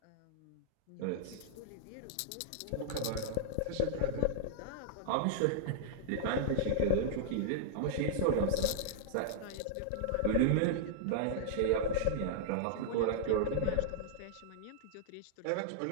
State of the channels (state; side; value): different; both; correlation -0.01